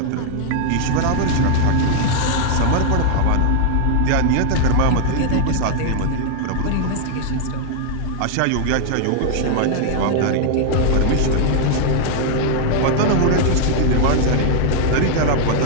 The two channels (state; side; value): different; both; correlation 0.00